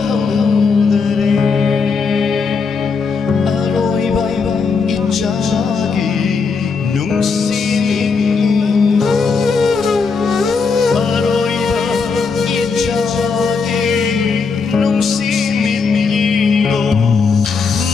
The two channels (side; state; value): right; quieter; 5.0 dB